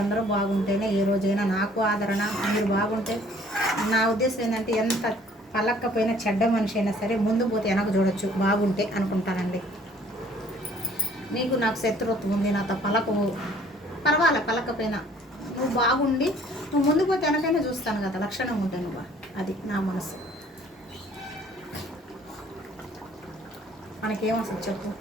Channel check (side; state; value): both; normal; correlation 0.57